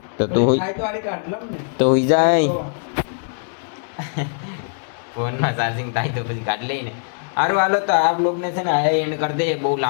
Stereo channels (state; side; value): silent; right; digital silence